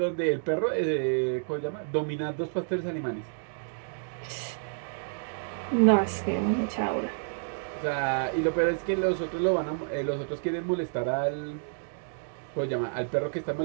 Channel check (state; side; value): silent; left; digital silence